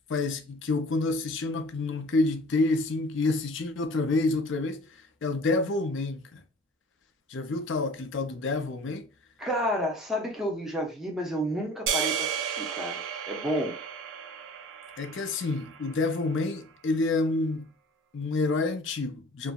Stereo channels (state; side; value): normal; both; correlation 0.47